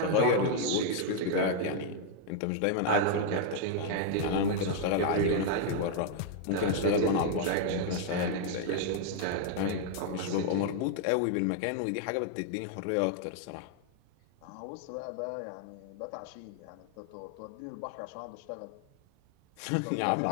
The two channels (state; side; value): different; both; correlation 0.00